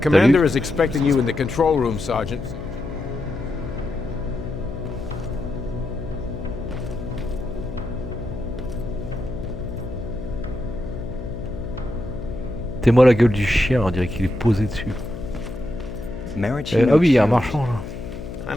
is expecting you in the control room, Sergeant. T'es moi la gueule du chien, on dirait qu'il est posé dessus. Ah oui, il y a un marchand là. I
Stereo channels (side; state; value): left; noise; hum, 9 dB below the sound